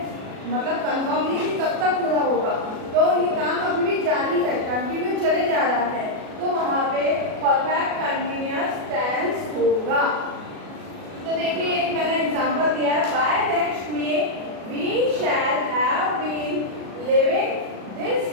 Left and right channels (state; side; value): late; left; 37 ms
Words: मतलब कंफर्म नहीं कि कब तक पूरा होगा, तो ये काम अभी भी जारी है, कंटिन्यू चले जा रहा है, तो वहाँ पे परफेक्ट कंटिन्यूअस टेंस होगा। तो देखिए एक मैंने एग्जांपल दिया है, बाय नेक्स्ट में we shall have been living this